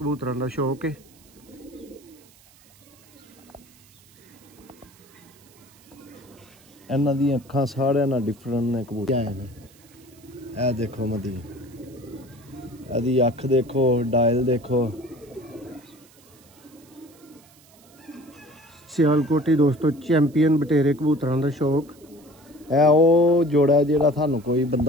का शौक है। इन्हां दी अखां सारे ना डिफरेंट ने कबूतर आए ने। ए देखो मदी, एदी अख देखो, डायल देखो। सियालकोटी दोस्तों चैंपियन बटेरे कबूतरों का शौक। ए ओ जोड़ा जेड़ा थानू कोई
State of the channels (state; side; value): noise; right; hiss, 27 dB below the sound